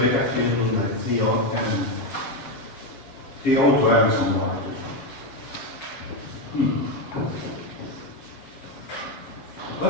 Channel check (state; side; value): late; right; 7.4 ms